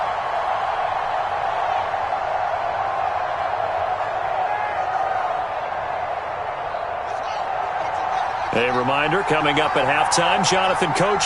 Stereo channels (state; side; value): identical; both; correlation 1.00